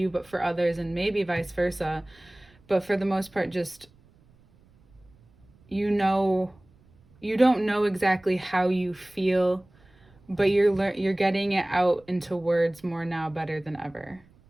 but for others, and maybe vice versa. But for the most part, just you don't know exactly how you feel, but you're getting it out into words more now, better than ever.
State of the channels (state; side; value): noise; right; rumble, 30 dB below the sound